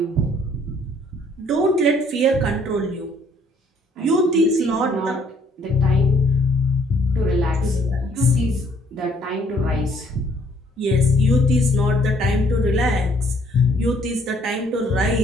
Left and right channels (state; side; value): normal; both; correlation 0.64